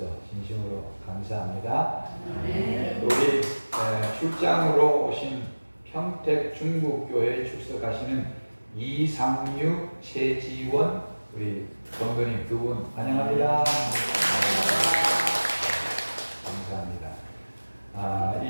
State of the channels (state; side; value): inverted; both; correlation -1.00